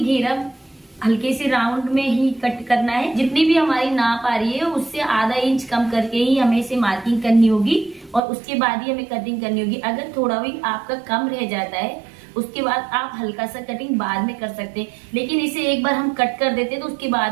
हल्के से राउंड में ही कट करना है। जितनी भी हमारी नाप आ रही है उससे आधा इंच कम करके ही हमें इसे मार्किंग करनी होगी और उसके बाद ही हमें कटिंग करनी होगी। अगर थोड़ा भी आपका कम रह जाता है उसके बाद आप हल्का सा कटिंग बाद में कर सकते हैं, लेकिन इसे एक बार हम कट कर देते हैं तो उसके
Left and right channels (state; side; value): drops out; left; at 8.2 s